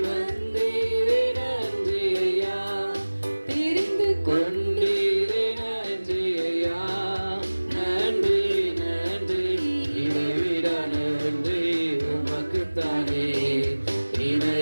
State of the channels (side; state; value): both; inverted; correlation -1.00